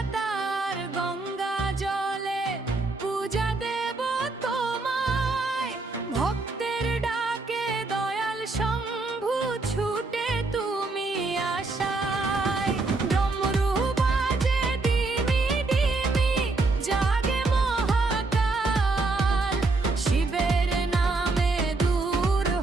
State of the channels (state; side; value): quieter; left; 3.5 dB